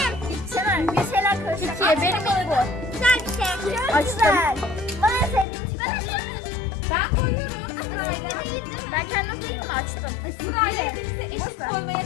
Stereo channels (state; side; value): drops out; right; at 5.5 s